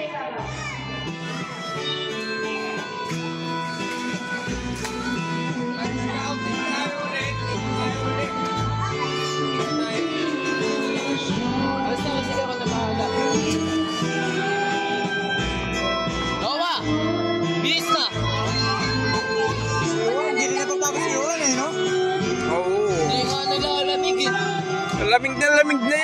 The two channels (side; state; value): both; identical; correlation 1.00